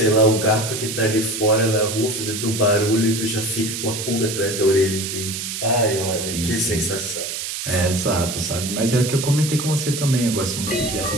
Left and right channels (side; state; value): right; noise; hiss, 5 dB below the sound